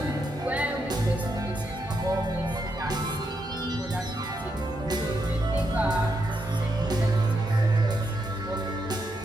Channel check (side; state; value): both; normal; correlation 0.81